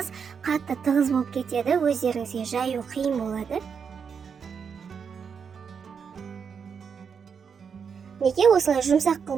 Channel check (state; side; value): quieter; left; 6.5 dB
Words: қатты тығыз болып кетеді, өздеріңізге жаю қиын болады. Неге осылай жұмсақ